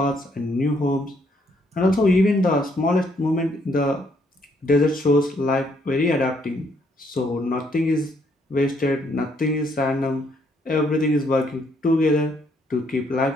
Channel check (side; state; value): both; normal; correlation 0.70